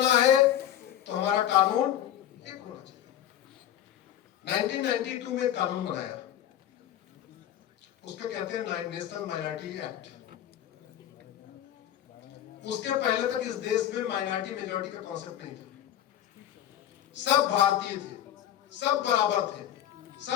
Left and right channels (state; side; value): quieter; right; 11.4 dB